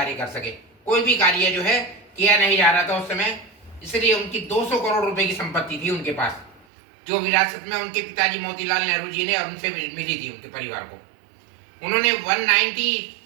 कर सके। कोई भी कार्य जो है किया नहीं जा रहा था उस समय, इसलिए उनकी 200 करोड़ रुपए की संपत्ति थी उनके पास, जो विरासत में उनके पिताजी मोतीलाल नेहरू जी ने और उनसे मिली थी उनके परिवार को। उन्होंने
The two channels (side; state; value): left; drops out; at 6.7 s